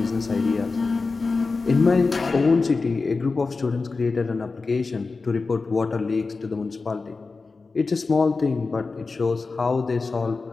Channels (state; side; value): quieter; right; 4.1 dB